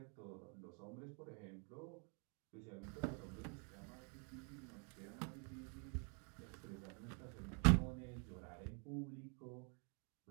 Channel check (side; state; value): left; quieter; 38.9 dB